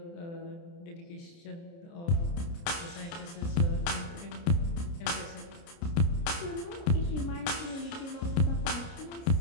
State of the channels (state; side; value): late; right; 29 ms